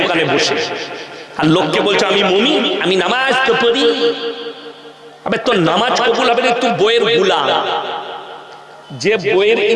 দোকানে বসে, আর লোককে বলছো আমি মুমিন, আমি নামাজ তো পড়ি। আবে তোর নামাজ কবুল হবে না, তুই বইয়ের গোলাম। যে বইয়ের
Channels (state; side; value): identical; both; correlation 1.00